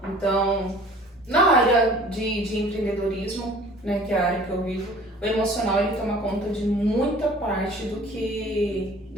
Então, na área de empreendedorismo, né, que é a área que eu vivo, o emocional ele toma conta de muita parte do que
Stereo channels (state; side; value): normal; both; correlation 0.49